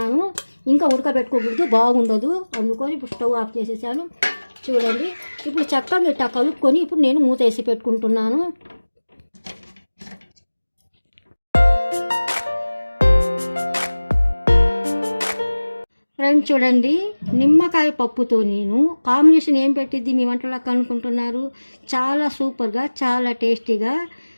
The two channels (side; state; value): both; inverted; correlation -1.00